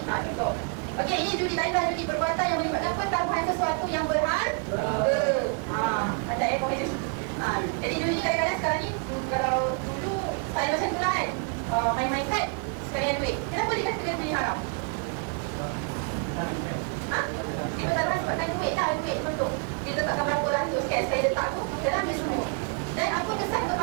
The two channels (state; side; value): quieter; left; 37.1 dB